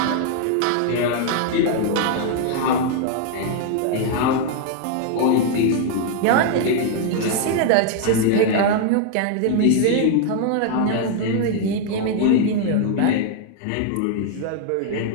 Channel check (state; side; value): different; both; correlation 0.00